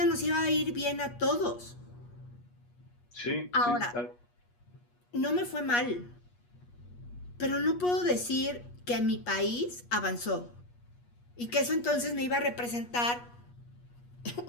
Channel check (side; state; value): right; late; 8.3 ms